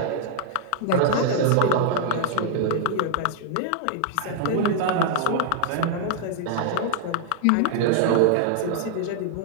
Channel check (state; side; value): different; both; correlation 0.00